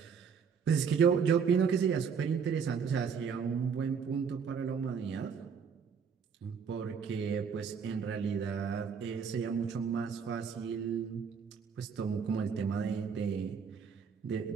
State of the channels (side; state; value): left; quieter; 6.4 dB